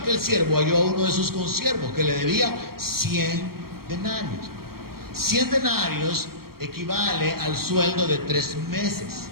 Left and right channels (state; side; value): late; left; 0.94 ms